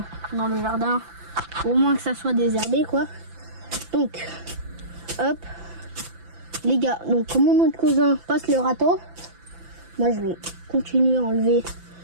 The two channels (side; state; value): left; late; 5.9 ms